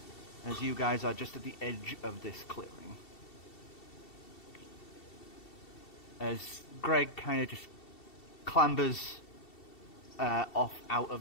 as you guys are just at the edge of this clearing. As Greg kind of just clambers off out of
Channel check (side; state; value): right; late; 2.7 ms